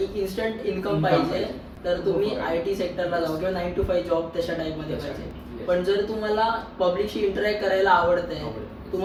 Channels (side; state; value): both; identical; correlation 1.00